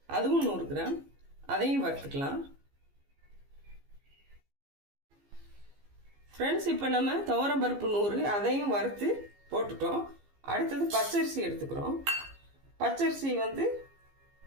அதுவும் 100 கிராம், அதையும் வறுத்துக்கலாம். ஃப்ரெண்ட்ஸ், இப்போ நம்ம துவரம் பருப்பு 100 அதையும் வறுத்து போட்டுட்டோம். அடுத்தது பச்சரிசி எடுத்துக்கிறோம். பச்சரிசி வந்து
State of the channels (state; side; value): late; left; 15 ms